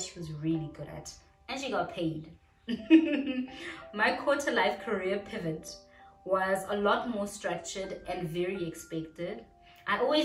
she was really good at. And she got paid. My quarter-life career pivot was a lot more structured and very expected. I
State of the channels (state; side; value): identical; both; correlation 1.00